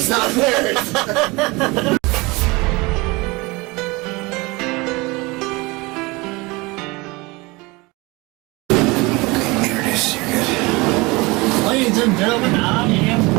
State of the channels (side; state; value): left; quieter; 24.4 dB